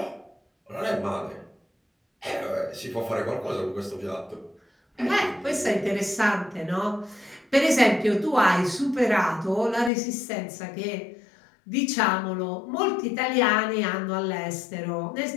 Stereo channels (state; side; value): drops out; right; at 9.9 s